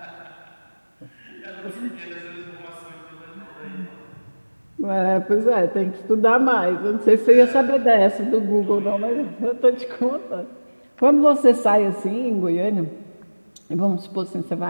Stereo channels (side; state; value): both; inverted; correlation -1.00